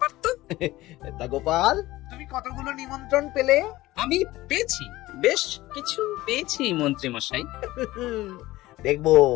তো। তা গোপাল, তুমি কতগুলো নিমন্ত্রণ পেলে? আমি পেয়েছি, বেশ কিছু পেয়েছি মন্ত্রী মশাই। দেখবো,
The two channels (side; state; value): right; quieter; 17.6 dB